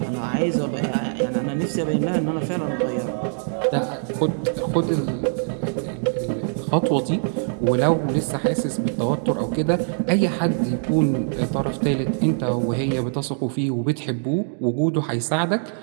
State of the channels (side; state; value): left; silent; digital silence